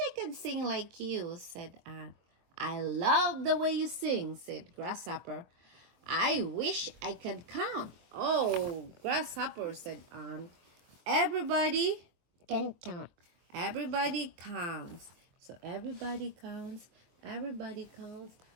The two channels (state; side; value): late; left; 23 ms